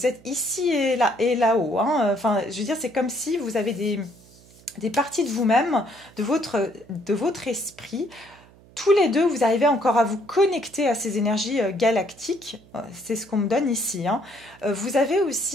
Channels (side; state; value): right; noise; hum, 26 dB below the sound